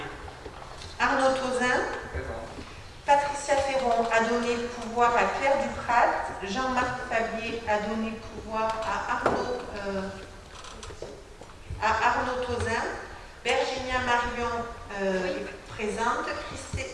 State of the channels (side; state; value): both; identical; correlation 1.00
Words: Arnaud Tauzin, Patricia Ferron a donné pouvoir à Claire Duprat, Jean-Marc Fabier a donné pouvoir à Arnaud Tauzin, Virginia Marion est présente,